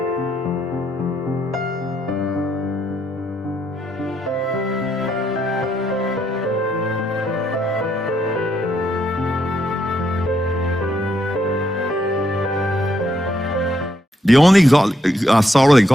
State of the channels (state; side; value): normal; both; correlation 0.76